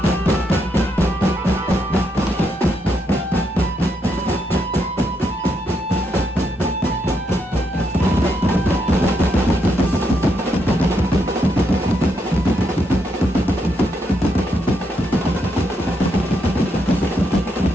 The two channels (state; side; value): normal; both; correlation 0.79